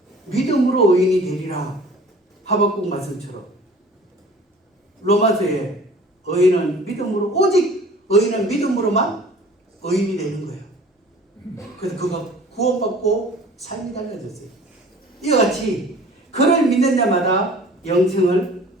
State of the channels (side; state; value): both; normal; correlation 0.47